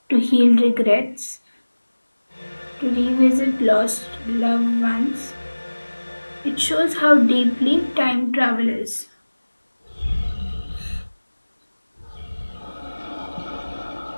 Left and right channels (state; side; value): inverted; both; correlation -1.00